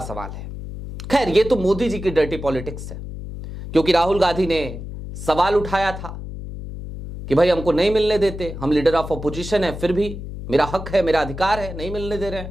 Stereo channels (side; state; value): left; noise; hum, 9 dB below the sound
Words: सवाल है। खैर, ये तो मोदी जी की डर्टी पॉलिटिक्स है, क्योंकि राहुल गांधी ने सवाल उठाया था कि भाई हमको नहीं मिलने देते, हम लीडर ऑफ अपोजिशन है, फिर भी मेरा हक है, मेरा अधिकार है, नहीं मिलने दे रहे